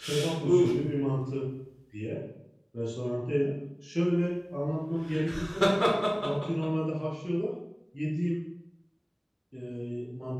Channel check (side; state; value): both; identical; correlation 1.00